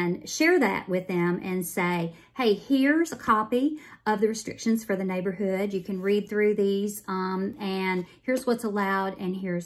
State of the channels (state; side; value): identical; both; correlation 1.00